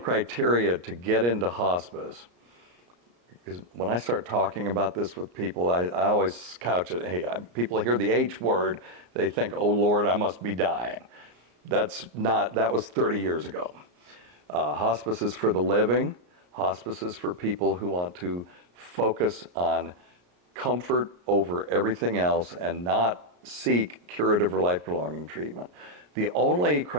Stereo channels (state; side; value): late; left; 34 ms